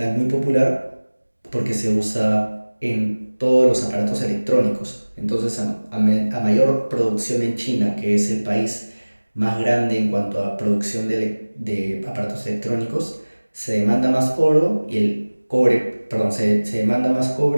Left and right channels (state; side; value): inverted; both; correlation -1.00